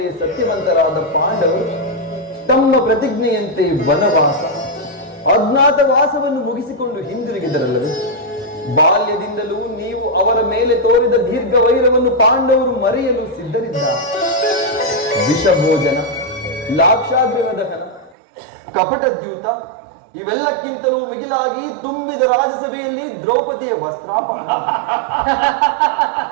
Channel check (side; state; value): left; drops out; at 18.2 s